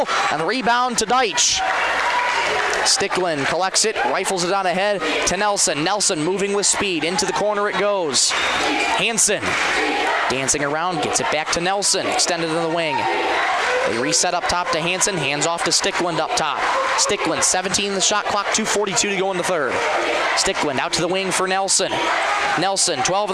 and the rebound to Deitch. Stickland collects it, rifles it on ahead to Nelson. Nelson moving with speed, into the corner it goes. Hansen dancing around, gets it back to Nelson, extended in the wing. They reset up top to Hansen, hands off to Stickland up top. Stickland, 17 in the shot clock, 2:42 to go in the third. Stickland out to the wing for Nelson. Nelson, 12 in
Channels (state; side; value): identical; both; correlation 1.00